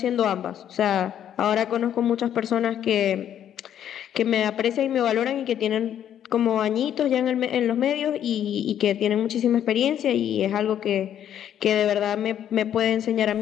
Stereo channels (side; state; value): right; quieter; 10.1 dB